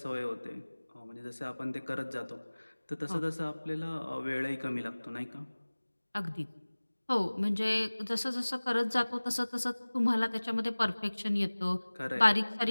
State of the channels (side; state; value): both; inverted; correlation -1.00